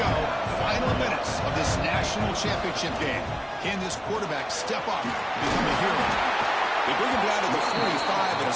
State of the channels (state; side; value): identical; both; correlation 1.00